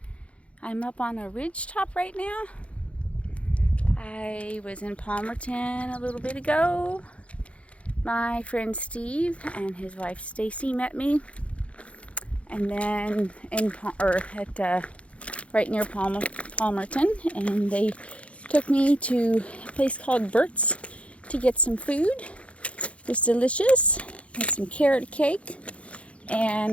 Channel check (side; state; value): right; late; 0.062 ms